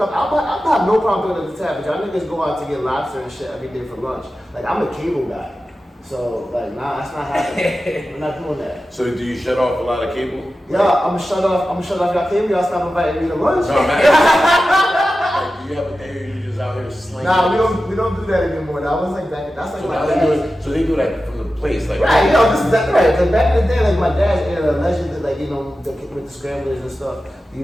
no problem picking up the tab, but y'all niggas go out to get lobster and shit every day for lunch. Like I'm a cable guy. So, like, nah, that's not happening. We're not doing that. So, do you shut off a lot of cable? Yeah, I'm gonna shut off y'all cable. Y'all stop inviting me to lunch. No, man. Like, do you have a day where you just out here slinging? Nah, we don't do that anymore. That was like back. That's like So my now dad's. they do that from the place, like. Right, you know, this is that right. Cause back in the day, like my dad's era, allegedly, like you know, with the scramblers and stuff. You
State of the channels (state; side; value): normal; both; correlation 0.93